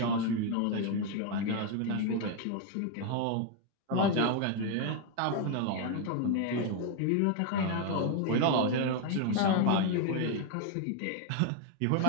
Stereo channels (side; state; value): both; different; correlation 0.01